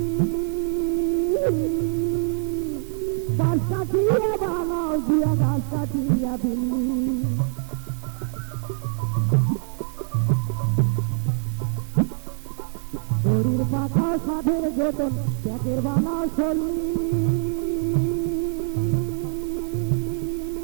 5 কাঠিয়া বানাও দিয়া 10 কাঠিয়া বিল্লি। ঘড়ির পাতার সাথে যতন প্যাকের বানাও চললি,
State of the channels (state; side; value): silent; left; digital silence